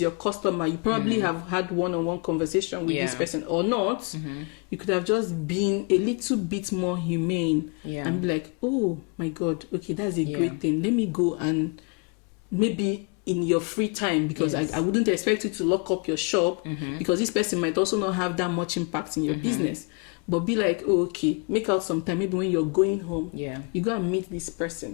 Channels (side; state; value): right; quieter; 35.5 dB